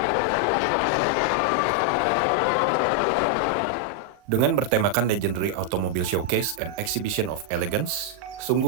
Dengan bertemakan Legendary Automobile Showcase and Exhibition of Elegance,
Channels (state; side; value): late; left; 39 ms